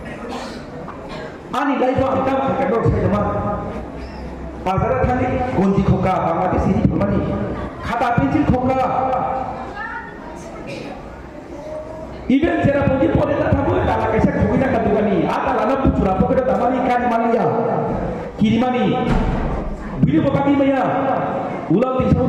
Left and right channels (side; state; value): both; identical; correlation 1.00